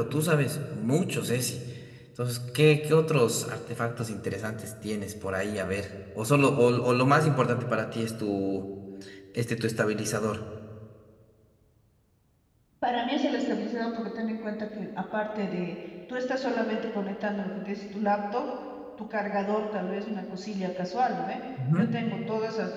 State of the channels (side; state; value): both; identical; correlation 1.00